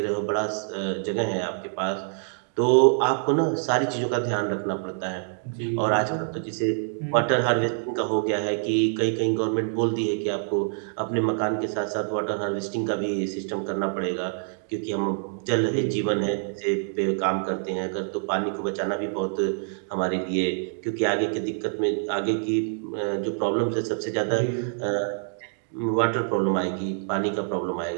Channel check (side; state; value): left; silent; digital silence